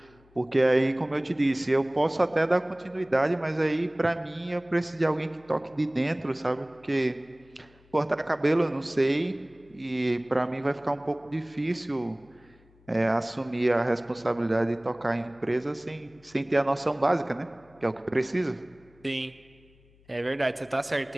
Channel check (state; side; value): noise; left; hum, 29 dB below the sound